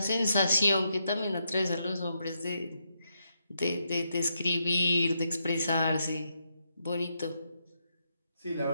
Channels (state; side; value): inverted; both; correlation -0.82